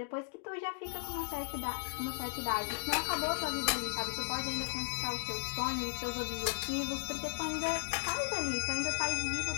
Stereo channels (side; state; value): right; silent; digital silence